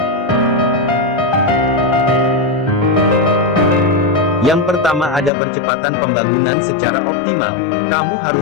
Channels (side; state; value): right; drops out; at 5.3 s